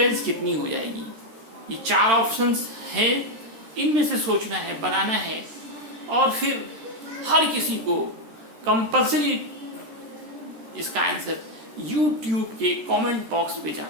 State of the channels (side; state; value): left; late; 13 ms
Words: कितनी हो जाएगी? ये 4 ऑप्शंस हैं, इनमें से सोचना है, बनाना है, और फिर हर किसी को कंपल्सरी इसका आंसर YouTube के कमेंट बॉक्स पे